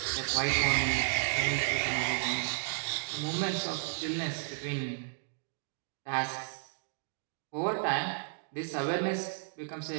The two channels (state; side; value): silent; left; digital silence